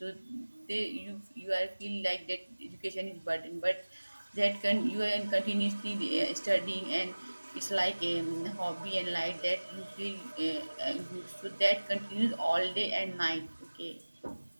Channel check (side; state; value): both; inverted; correlation -1.00